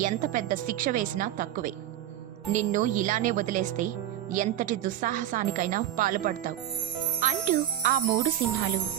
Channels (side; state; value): left; quieter; 12.2 dB